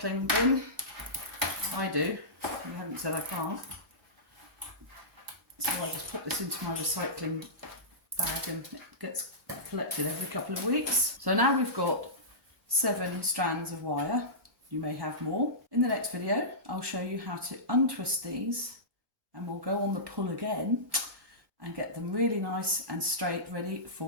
bin. I do. You haven't said I can't. So I just put this into my recycling bag and it gets collected every couple of weeks. So now we've got 7 strands of wire. You may have more. In the next video, I'll show you how to untwist these, and we'll go on the pull again and get them really nice and straight, ready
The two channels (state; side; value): normal; both; correlation -0.19